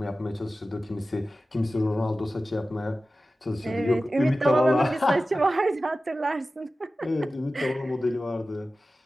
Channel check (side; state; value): both; normal; correlation 0.95